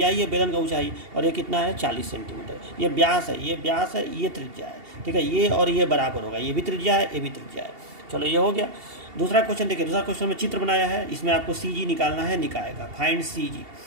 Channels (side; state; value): left; late; 2.7 ms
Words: ही है बेलन का ऊंचाई। और ये कितना है, 40 सेंटीमीटर। ये व्यास है, ये व्यास है, ये त्रिज्या है, ठीक है। ये और ये बराबर होगा, ये भी त्रिज्या है, ये भी त्रिज्या है। चलो, ये हो गया। दूसरा क्वेश्चन देखिए, दूसरा क्वेश्चन में चित्र बनाया है, इसमें आपको CG निकालना है निकाय का, फाइंड CG,